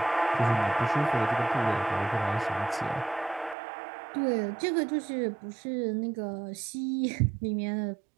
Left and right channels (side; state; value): left; drops out; at 3.6 s